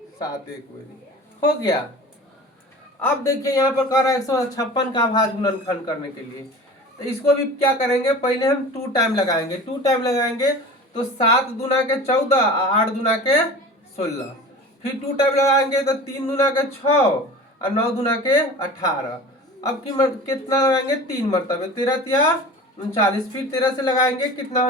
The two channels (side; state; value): both; normal; correlation 0.38